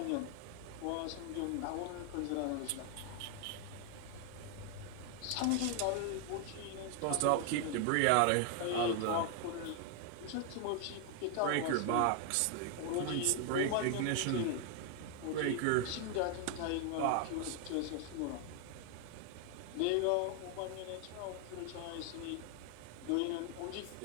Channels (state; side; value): different; both; correlation 0.00